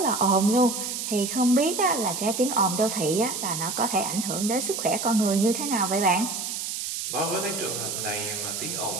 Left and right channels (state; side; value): noise; right; hiss, 4 dB below the sound